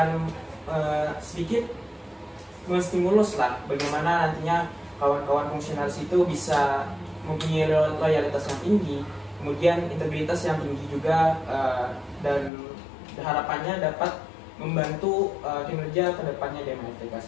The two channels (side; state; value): right; drops out; at 12.5 s